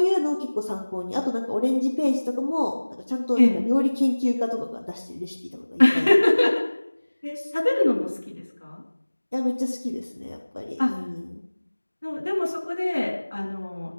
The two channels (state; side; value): inverted; both; correlation -1.00